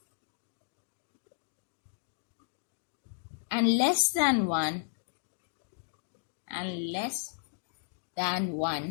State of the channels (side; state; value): right; silent; digital silence